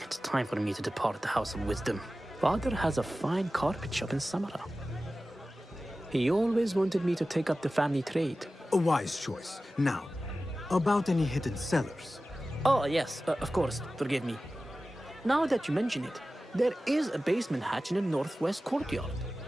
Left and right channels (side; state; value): both; normal; correlation 0.95